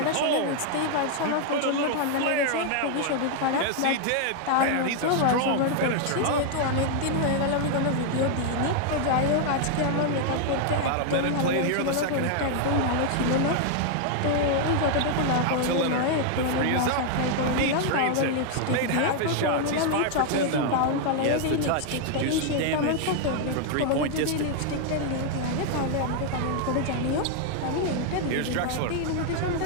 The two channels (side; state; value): both; different; correlation 0.00